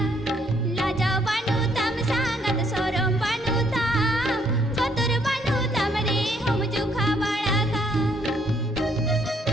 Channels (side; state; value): both; normal; correlation 0.69